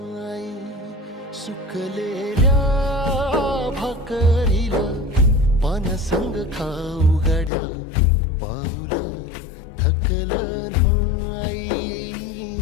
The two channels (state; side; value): drops out; right; at 7.5 s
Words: सुकलेल्या भाकरीला पानसंग खाऊ गड्या, पाऊल थकलं